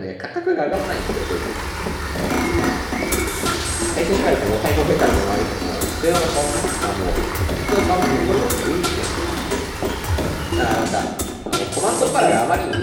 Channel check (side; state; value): both; identical; correlation 1.00